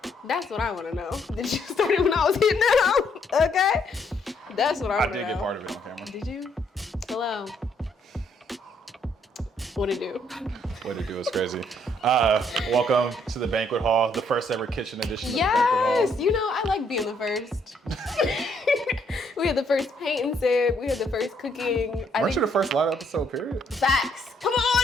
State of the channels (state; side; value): normal; both; correlation 0.70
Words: That's what I want to know. Did you start it when I was hitting it out? Okay. That's what I want to know. I did get part of it on camera. Did you? Hello. What'd it do? What it do is crazy. Welcome to the banquet hall, the first ever kitchen edition of the banquet hall. Yes, you know, I like being the first. We had the first paint and sip. We had the first cooking. Weren't you the first live episode, period? Facts. Come